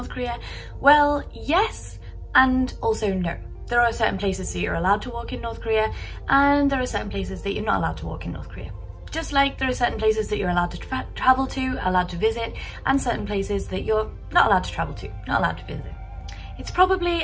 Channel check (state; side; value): identical; both; correlation 1.00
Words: Korea? Well, yes, and also no. There are certain places that you're allowed to walk in North Korea, and there are certain places that you're not allowed to walk in North Korea. Just like there are certain places that you're allowed to travel to, allowed to visit, and certain places that you're not allowed to travel to, not allowed to visit. It's probably